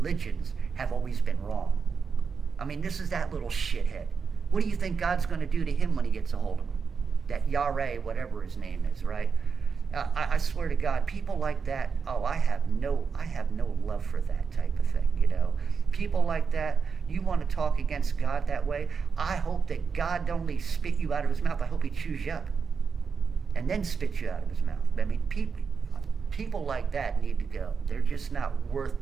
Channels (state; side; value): quieter; left; 5.7 dB